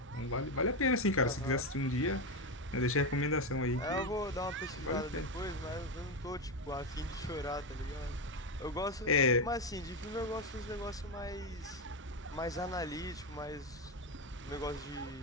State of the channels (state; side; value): normal; both; correlation 0.11